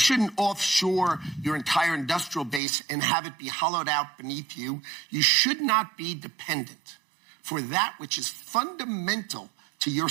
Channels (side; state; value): left; drops out; at 2.6 s